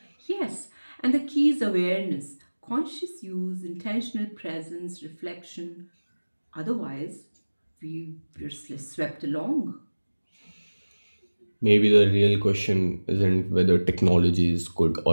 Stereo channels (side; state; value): both; inverted; correlation -1.00